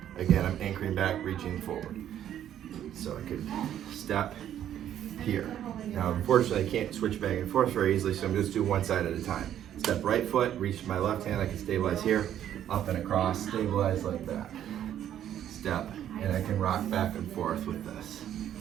Again, I'm anchoring back, reaching forward. So I could step here. Now, unfortunately, I can't switch back and forth very easily, so I'm just doing one side at a time. Step right foot, reach my left hand, I can stabilize here, up and across, stabilize like that. Step, and I can rock back and forth with this.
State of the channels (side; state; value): left; quieter; 10.7 dB